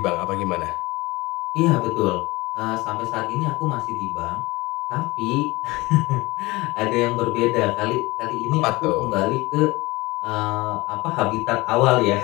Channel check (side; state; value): right; quieter; 21.7 dB